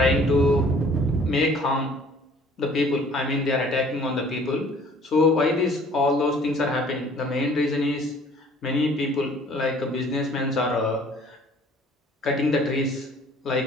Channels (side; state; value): both; normal; correlation 0.54